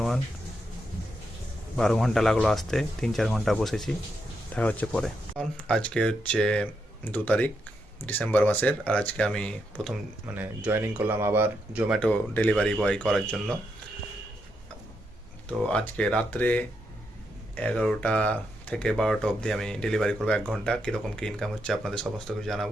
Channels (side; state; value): both; normal; correlation 0.82